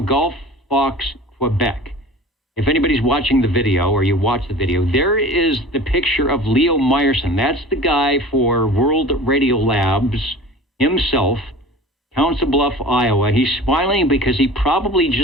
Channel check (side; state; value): both; normal; correlation 0.40